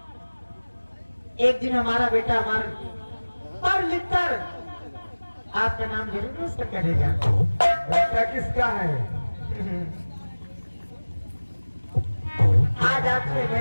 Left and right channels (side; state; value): both; inverted; correlation -1.00